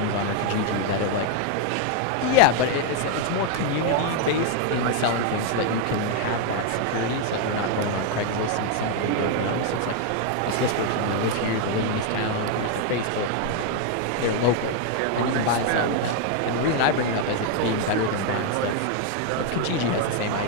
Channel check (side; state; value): both; different; correlation 0.00